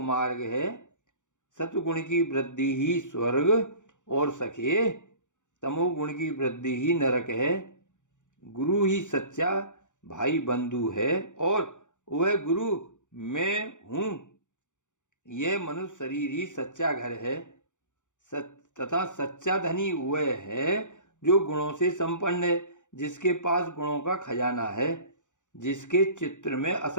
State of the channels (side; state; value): right; late; 0.85 ms